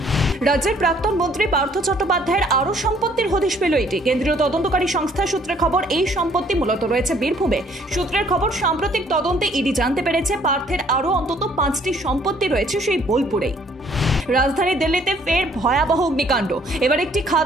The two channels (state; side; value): normal; both; correlation 0.61